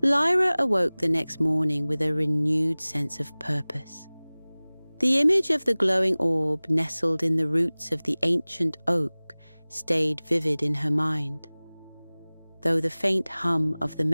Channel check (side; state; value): both; inverted; correlation -1.00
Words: Lyra awoke the next morning with a renewed sense of purpose. The image of the glowing orb nestled in the roots of the ancient oak stayed vivid in her mind. Though the faint hum of the